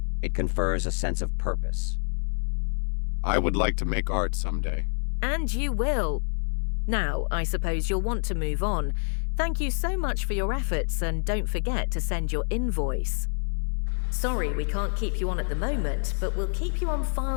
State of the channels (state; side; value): silent; right; digital silence